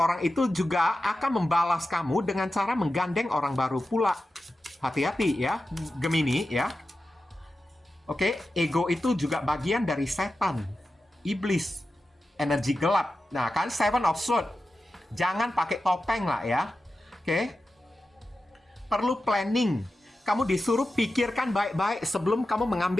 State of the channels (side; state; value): both; normal; correlation 0.92